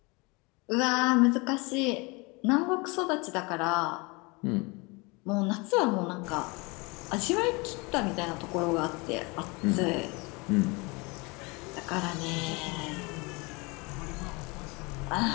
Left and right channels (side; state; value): right; quieter; 27.3 dB